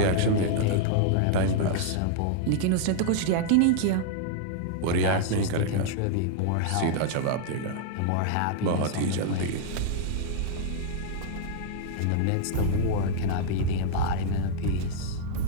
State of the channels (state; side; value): different; both; correlation -0.01